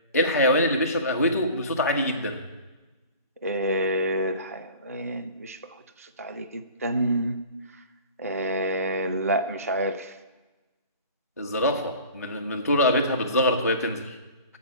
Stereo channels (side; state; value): both; inverted; correlation -0.42